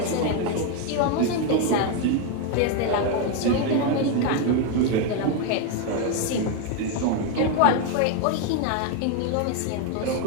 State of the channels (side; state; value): both; different; correlation 0.01